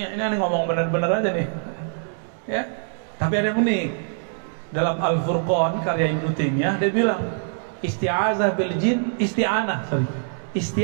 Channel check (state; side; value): silent; left; digital silence